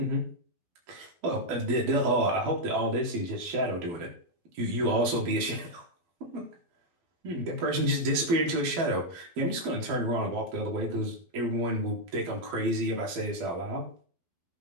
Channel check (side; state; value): left; late; 12 ms